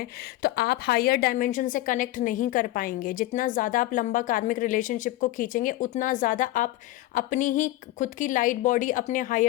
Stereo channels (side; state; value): right; quieter; 16.7 dB